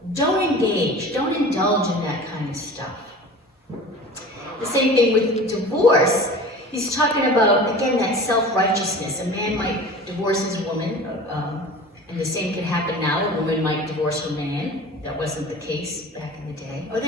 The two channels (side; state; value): both; normal; correlation 0.39